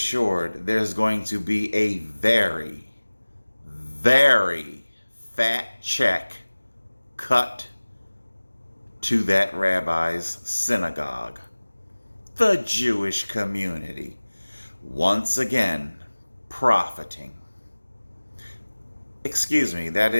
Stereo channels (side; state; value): both; inverted; correlation -1.00